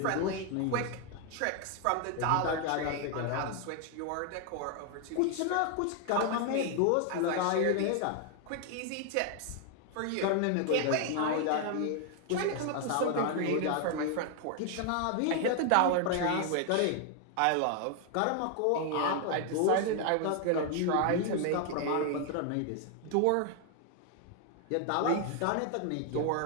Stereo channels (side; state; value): both; different; correlation 0.00